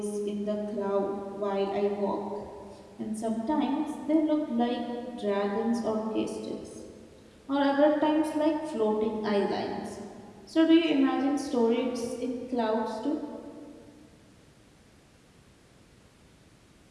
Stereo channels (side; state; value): both; identical; correlation 1.00